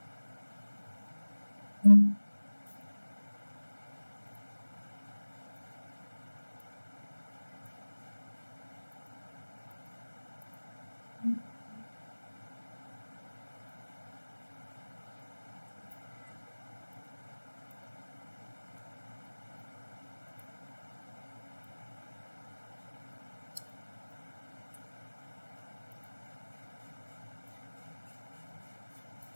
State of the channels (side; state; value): both; inverted; correlation -1.00